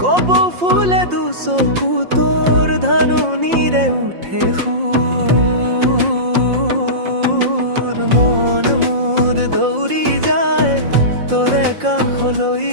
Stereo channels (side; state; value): left; late; 5.6 ms